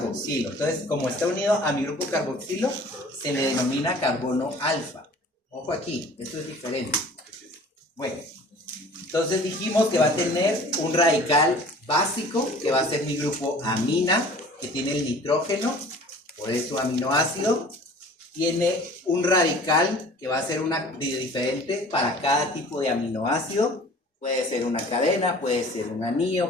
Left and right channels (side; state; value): both; normal; correlation 0.47